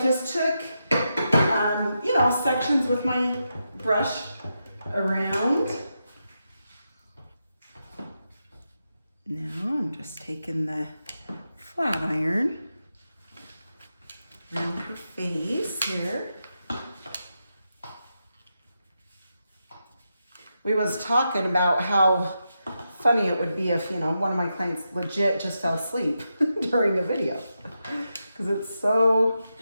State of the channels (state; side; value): inverted; both; correlation -0.87